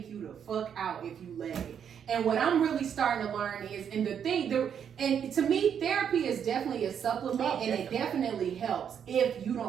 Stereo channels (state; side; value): quieter; left; 8.1 dB